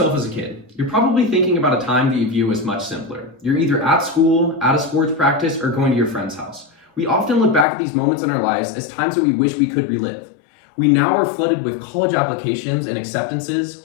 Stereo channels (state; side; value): drops out; right; at 7.7 s